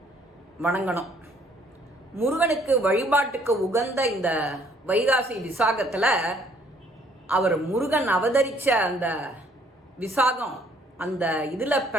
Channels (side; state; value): both; normal; correlation 0.63